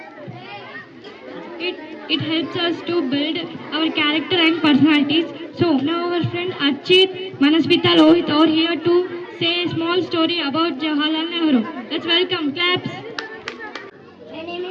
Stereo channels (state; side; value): identical; both; correlation 1.00